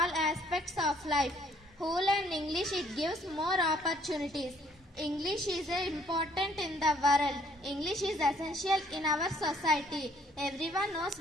aspects of life. Who learn English, it gives more opportunities. English is important in the world. English is essential in our society. Everyone knows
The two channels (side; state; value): both; normal; correlation 0.63